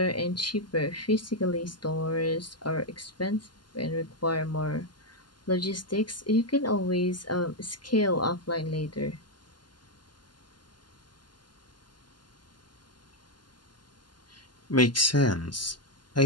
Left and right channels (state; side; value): late; right; 0.71 ms